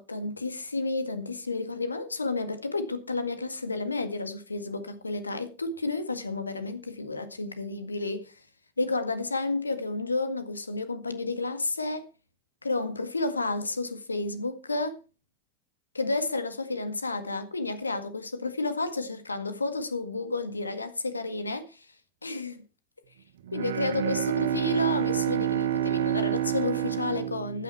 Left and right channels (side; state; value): both; inverted; correlation -0.62